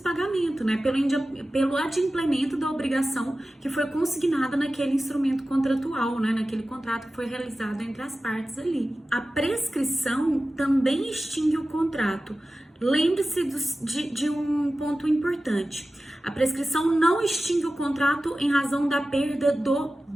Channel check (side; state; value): both; normal; correlation 0.95